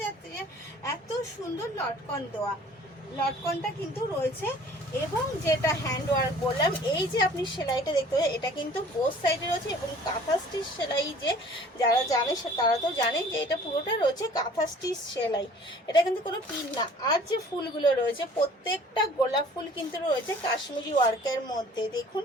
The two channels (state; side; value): normal; both; correlation 0.50